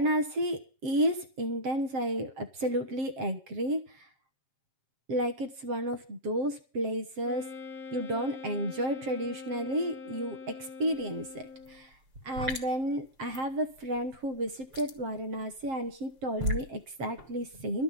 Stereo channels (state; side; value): late; left; 7.5 ms